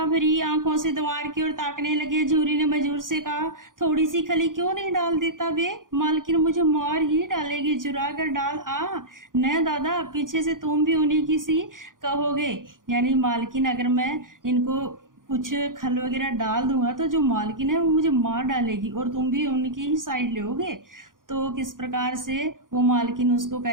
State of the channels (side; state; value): left; late; 0.90 ms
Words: भरी आंखों से द्वार की ओर ताकने लगे। झूरी ने मजूर से कहा, थोड़ी सी खली क्यों नहीं डाल देता बे? मालकिन मुझे मार ही डालेगी, चुरा कर डाल आ। न दादा, पीछे से तुम भी उन्हीं की सी कहोगे, यानी मालकिन अगर मैं इनको कुछ खल वगैरह डाल दूंगा तो जो मालकिन है वो मुझे मार डालेगी और तुम भी उनकी ही साइड लोगे। तो किस प्रकार से वो मालकिन उसको